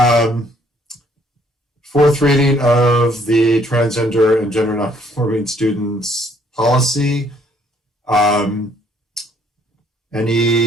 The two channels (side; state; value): both; normal; correlation 0.65